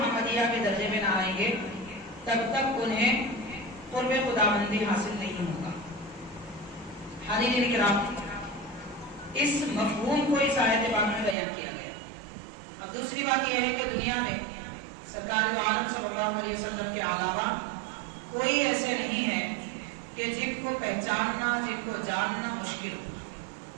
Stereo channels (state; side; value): drops out; left; at 11.4 s